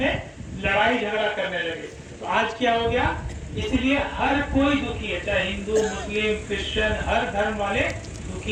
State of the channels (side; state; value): both; identical; correlation 1.00